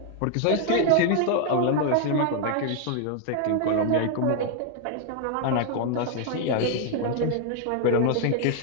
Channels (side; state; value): both; different; correlation 0.00